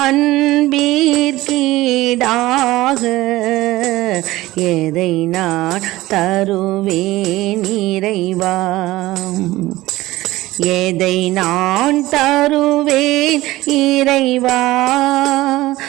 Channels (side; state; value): left; quieter; 17.8 dB